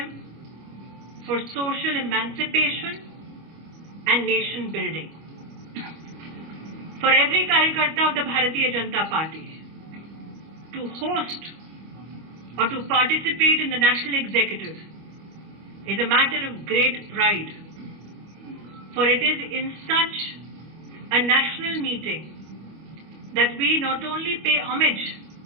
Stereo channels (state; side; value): late; left; 25 ms